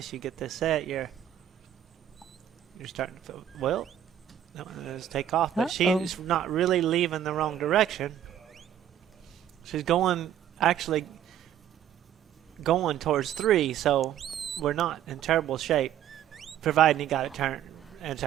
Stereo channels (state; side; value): quieter; left; 10.6 dB